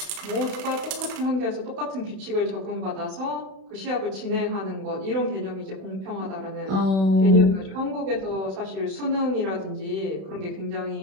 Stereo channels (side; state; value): left; late; 31 ms